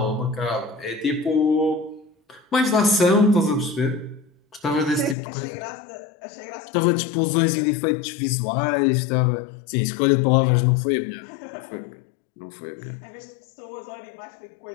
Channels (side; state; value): right; drops out; at 5.2 s